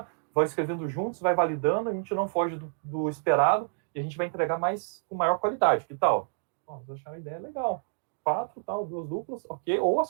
vão escrevendo juntos, vai validando, a gente não foge do esperado e a gente vai entregar mais com maior qualidade. Que tal? Vocês acharam a ideia legal. 4, tal, 2 duplas, ok. Ou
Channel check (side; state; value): left; silent; digital silence